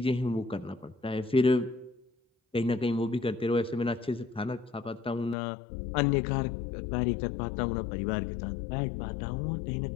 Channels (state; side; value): drops out; right; at 5.4 s